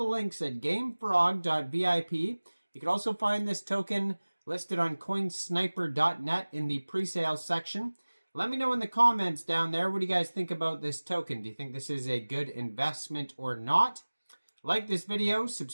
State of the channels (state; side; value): inverted; both; correlation -1.00